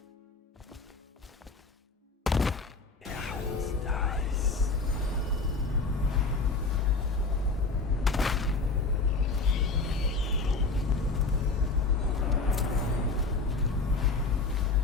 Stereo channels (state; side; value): quieter; right; 3.8 dB